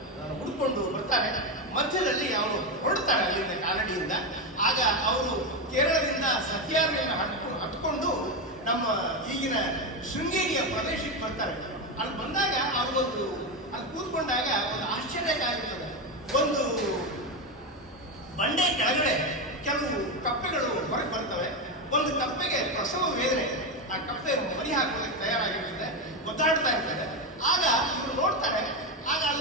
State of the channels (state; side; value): normal; both; correlation 0.11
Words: ಹುಡುಕೊಂಡು ಬರ್ತಾರೆ. ಮಧ್ಯದಲ್ಲಿ ಅವರು ಹೊರಡ್ತಾರೆ ಅಲ್ಲಿಂದ ಕಾಲಡಿಯಿಂದ. ಆಗ ಅವರು ಕೇರಳದಿಂದ ಸಹ್ಯಾದ್ರಿಯನ್ನು ಹತ್ಕೊಂಡು ನಮ್ಮ ಈಗಿನ ಶೃಂಗೇರಿಯ ಪ್ರದೇಶಕ್ಕೆ ಬರ್ತಾರೆ. ಅಲ್ಲಿ ಬಂದಾಗ ಅವ್ರಿಗೊಂದು ಅಲ್ಲಿ ಕೂತ್ಕೊಂಡಾಗ ಒಂದು ಆಶ್ಚರ್ಯಕಾಗಿರ್ತದೆ. ಒಂದು ಬಂಡೆ ಕೆಳಗಡೆ ಕೆಲವು ಕಪ್ಪೆಗಳು ಹೊರಗೆ ಬರ್ತವೆ. ಒಂದು ಕಪ್ಪೆಗೆ ಪ್ರಸವ ವೇದನೆ, ಆ ಕಪ್ಪೆ ಮರಿ ಹಾಕೋದಕ್ಕೆ ತಯಾರಾಗಿರ್ತದೆ, ಒದ್ದಾಡ್ತಾ ಇರ್ತದೆ. ಆಗ ಇವರು ನೋಡ್ತಾರೆ, ಆಗ